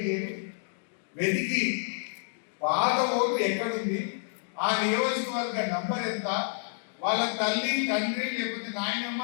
వెతికి పాత ఓటు ఎక్కడుంది, ఆ నియోజకవర్గ నంబర్ ఎంత, వాళ్ళ తల్లి తండ్రి లేకపోతే నాయనమ్మ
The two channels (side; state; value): right; silent; digital silence